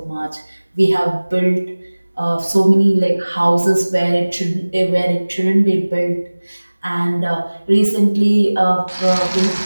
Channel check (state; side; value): inverted; both; correlation -1.00